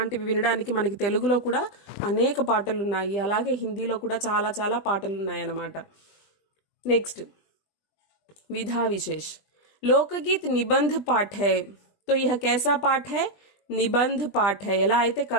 వినడానికి మనకి తెలుగులో కూడా అనేక పాటలు ఉన్నాయి, అలాగే హిందీలో కూడా చాలా చాలా పాటలు ఉన్నాయి అన్నమాట. నెక్స్ట్ विधा विशेष. लोकगीत निबंध पाठ है. तो यह कैसा पाठ है? నిబంధ్ పాఠ. ఎలా అయితే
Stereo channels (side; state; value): right; late; 20 ms